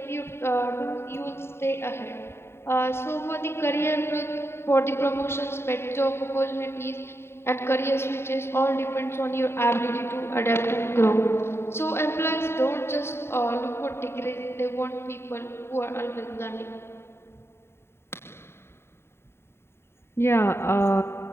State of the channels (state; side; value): late; right; 0.12 ms